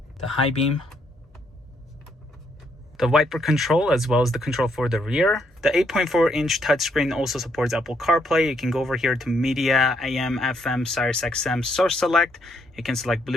the high beam, the wiper control, as well as the control for the rear. The 8.4-inch touchscreen also supports Apple Carplay. You can go over here to media, AM, FM, Sirius XM, source select. You can select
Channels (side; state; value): both; normal; correlation 0.73